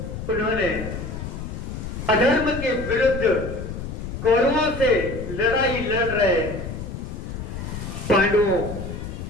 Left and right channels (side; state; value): left; noise; rumble, 7 dB below the sound